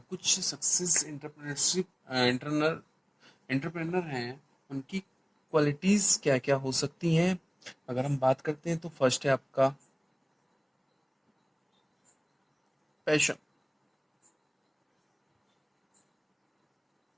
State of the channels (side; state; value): both; identical; correlation 1.00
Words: कुछ success entrepreneurship entrepreneur हैं, उनकी qualities क्या क्या हो सकती हैं। अगर हम बात करते हैं तो फर्स्ट है आपका पैशन।